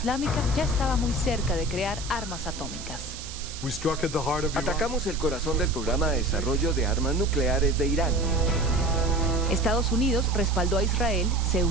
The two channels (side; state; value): right; noise; hiss, 12 dB below the sound